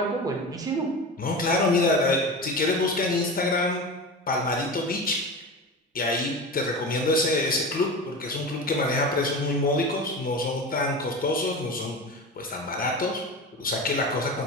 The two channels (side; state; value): both; normal; correlation 0.28